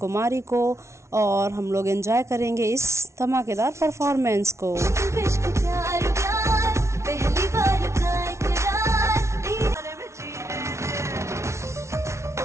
को, और हम लोग एंजॉय करेंगे इस धमाकेदार परफॉर्मेंस को। पहली बार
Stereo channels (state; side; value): late; left; 0.13 ms